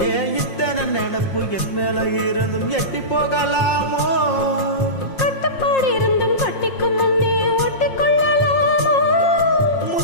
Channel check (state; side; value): late; right; 5.6 ms